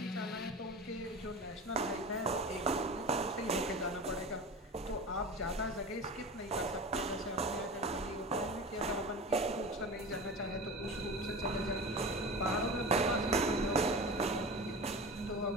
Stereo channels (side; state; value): both; normal; correlation 0.31